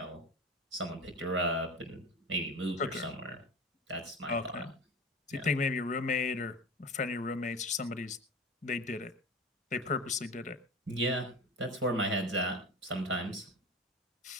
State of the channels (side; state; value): both; normal; correlation 0.31